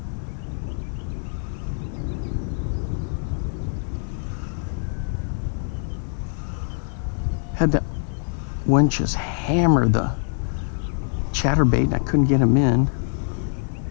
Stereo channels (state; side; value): silent; right; 63 dB below the other